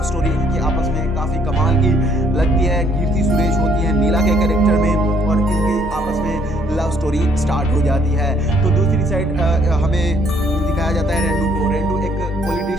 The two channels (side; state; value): both; normal; correlation 0.66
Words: स्टोरी इनकी आपस में काफ़ी कमाल की लगती है। कीर्ति सुरेश होती है नीला के कैरेक्टर में, और इनकी आपस में लव स्टोरी स्टार्ट हो जाती है। तो दूसरी साइड हमें दिखाया जाता है रेंडू को। रेंडू एक